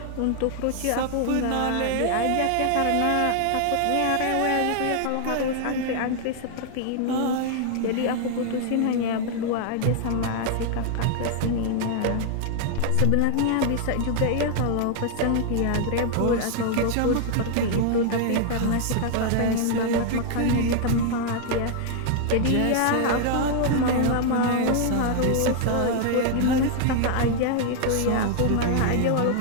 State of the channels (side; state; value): both; different; correlation 0.00